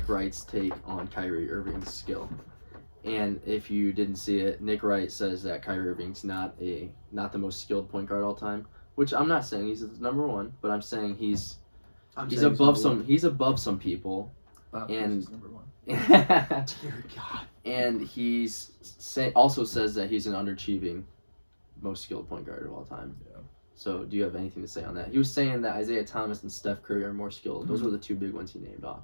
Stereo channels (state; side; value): inverted; both; correlation -1.00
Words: Wright's take on Kyrie Irving's skill. And if you didn't see it, Nick Wright says that Kyrie Irving's not the most skilled point guard all time, which I'm not saying he's number one, but I'm saying he's He's above some people. Bob And- Cousy is number one. Dear God. And he's also says that he's an underachieving most skilled point guard of all time. Yeah. So do you have anything to say on that? He was saying that Isaiah Thomas and Steph Curry are more skilled. Those were the two big ones he named off.